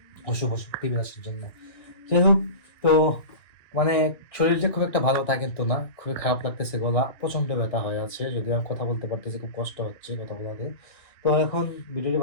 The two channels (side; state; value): right; late; 1.9 ms